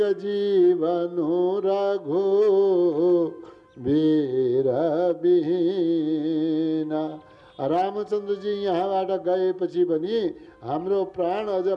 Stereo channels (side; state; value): both; identical; correlation 1.00